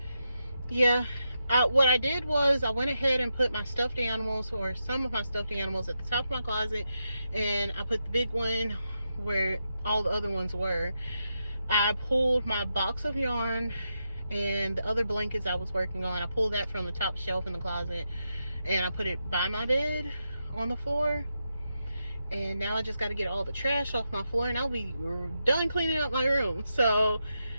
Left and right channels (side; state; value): both; inverted; correlation -0.86